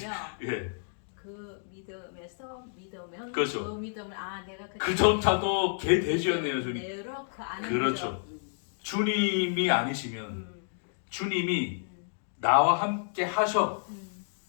예. 그 믿음에서 믿으면 그렇죠. 그 믿음을 내가 그조차도 개돼지였네요, 주님. 내로 그 안에 그렇죠. 주님이 아니시면 음, 주님이 나와 함께 하셔.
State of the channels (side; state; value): right; silent; digital silence